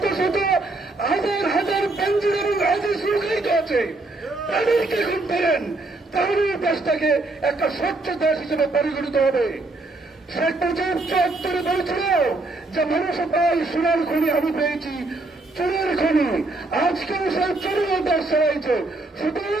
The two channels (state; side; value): quieter; left; 3.0 dB